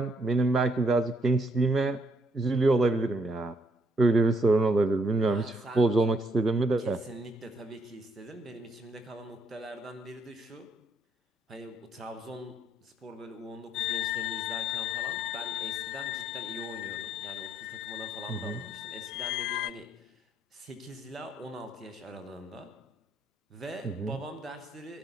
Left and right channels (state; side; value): normal; both; correlation 0.71